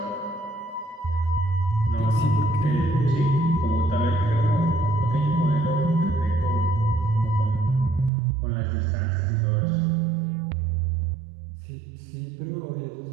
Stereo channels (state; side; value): drops out; left; at 8.1 s